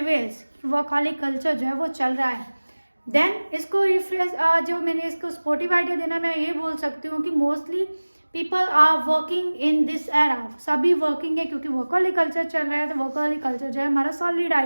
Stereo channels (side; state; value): both; inverted; correlation -1.00